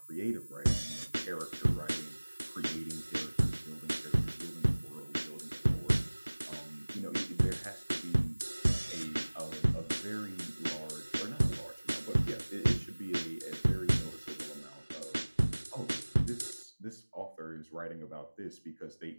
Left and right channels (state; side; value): inverted; both; correlation -1.00